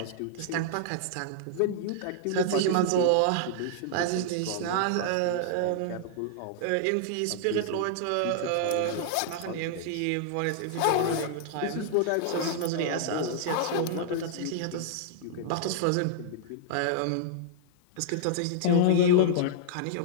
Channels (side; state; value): both; different; correlation -0.01